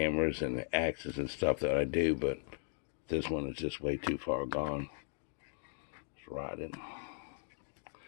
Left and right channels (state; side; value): silent; right; digital silence